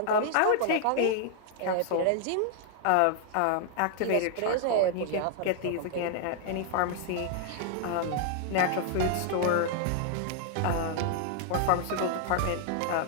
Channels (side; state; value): both; different; correlation 0.00